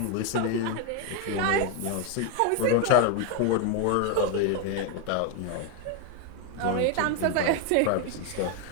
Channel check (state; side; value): different; both; correlation 0.01